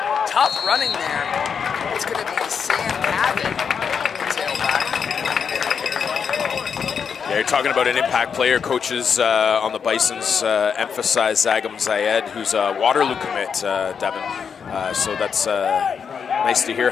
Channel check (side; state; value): right; quieter; 6.6 dB